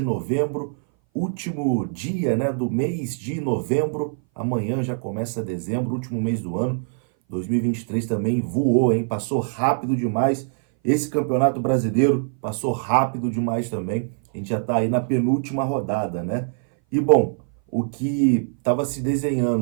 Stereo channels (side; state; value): left; silent; 59 dB below the other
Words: novembro, último dia, do mês de novembro. Amanhã já começa dezembro, último mês do ano. 2023 também voou, hein? Passou rápido demais. Esse campeonato brasileiro passou rápido demais também. A gente já está aí na penúltima rodada, né? E bom, o que estava se